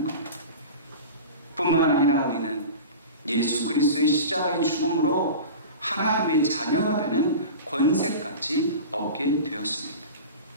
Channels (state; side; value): inverted; both; correlation -0.33